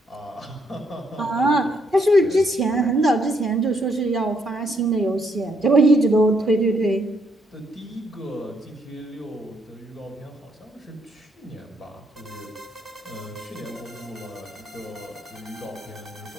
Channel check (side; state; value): both; normal; correlation 0.73